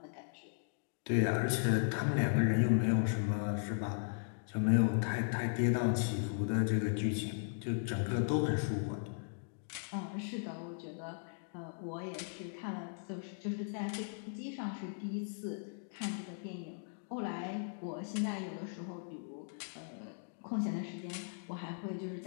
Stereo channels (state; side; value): silent; right; digital silence